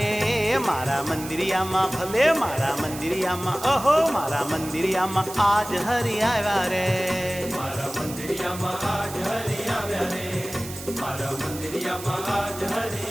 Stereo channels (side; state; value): right; noise; hiss, 12 dB below the sound